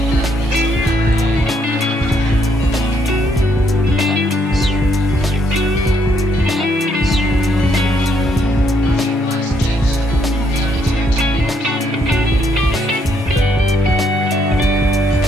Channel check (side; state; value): both; normal; correlation 0.72